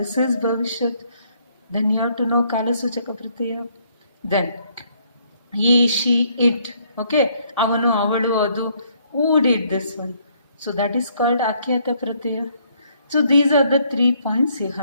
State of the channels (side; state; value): both; inverted; correlation -0.68